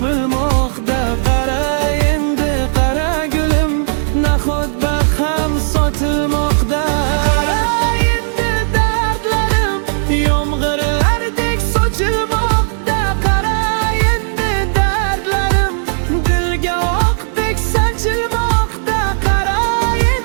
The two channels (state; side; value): silent; left; digital silence